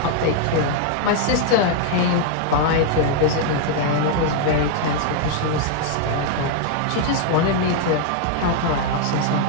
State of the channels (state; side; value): different; both; correlation 0.00